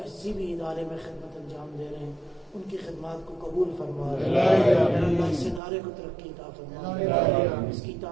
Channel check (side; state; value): left; drops out; at 5.6 s